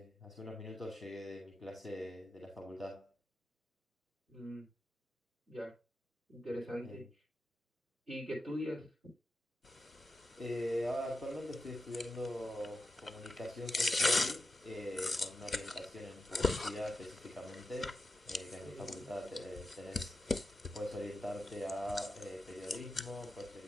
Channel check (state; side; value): normal; both; correlation 0.88